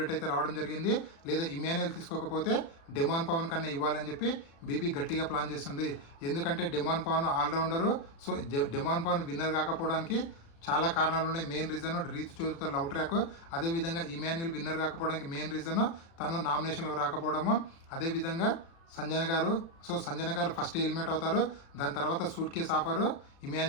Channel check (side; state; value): right; late; 36 ms